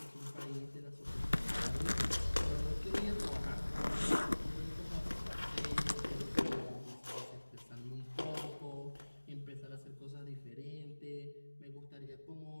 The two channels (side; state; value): both; inverted; correlation -1.00